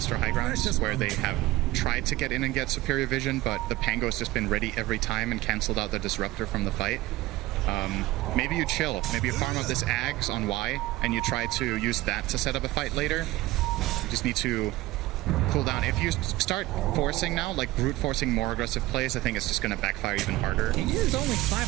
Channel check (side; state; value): left; quieter; 18.1 dB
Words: high grounds, where they have tried to get in and get superior vision, but the Pango's just been ready every time and canceled out the Disruptor from the fight. Maybe you chill. Maybe you farm out this Ags on Y, and you try to use that to set up a fight later. You just need to cool down. If you start forcing now, like brute forcing more aggressive plays, I think it's just going to backfire even harder. He is only